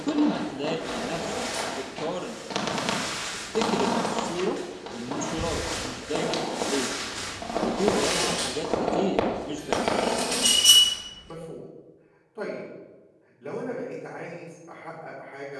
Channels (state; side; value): identical; both; correlation 1.00